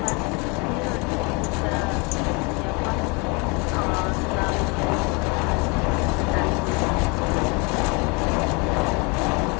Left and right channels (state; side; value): quieter; right; 30.1 dB